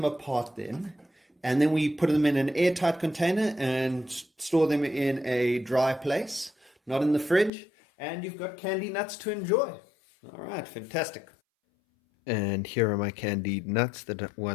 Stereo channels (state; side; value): drops out; right; at 7.5 s